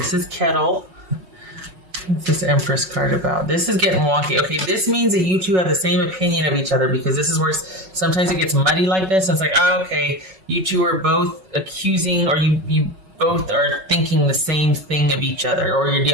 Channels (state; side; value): late; left; 5.5 ms